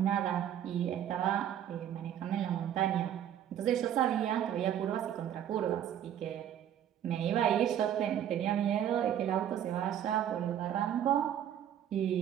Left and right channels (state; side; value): quieter; left; 10.2 dB